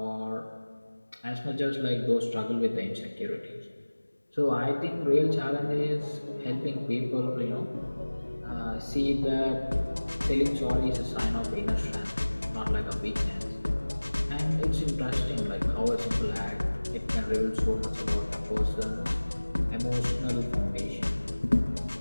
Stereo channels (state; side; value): inverted; both; correlation -1.00